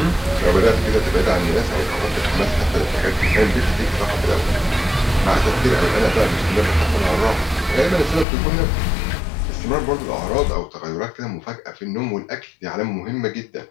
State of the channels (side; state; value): right; drops out; at 8.2 s